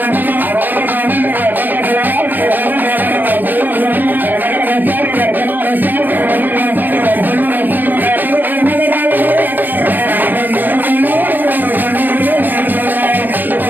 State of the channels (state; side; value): late; left; 0.088 ms